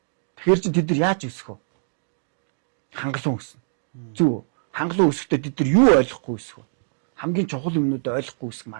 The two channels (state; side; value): silent; left; digital silence